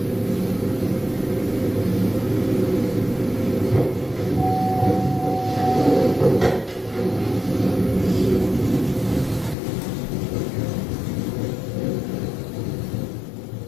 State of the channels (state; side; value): drops out; right; at 9.6 s